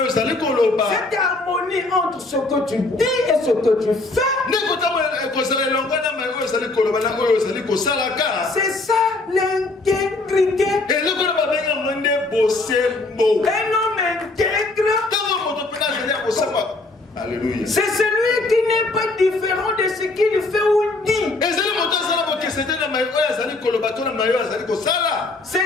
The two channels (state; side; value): quieter; right; 3.2 dB